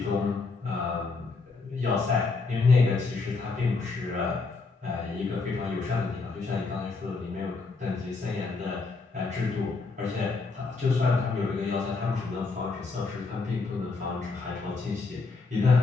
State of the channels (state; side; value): quieter; right; 4.1 dB